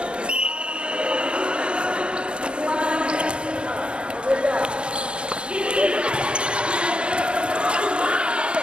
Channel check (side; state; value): left; late; 0.055 ms